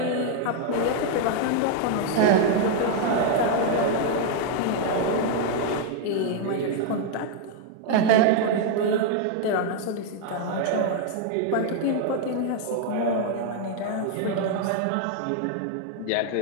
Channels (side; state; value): both; different; correlation 0.00